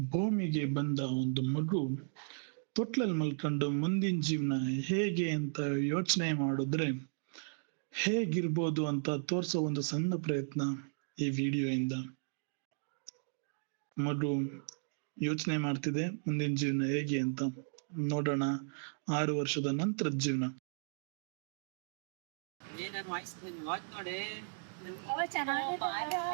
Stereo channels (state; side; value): silent; left; digital silence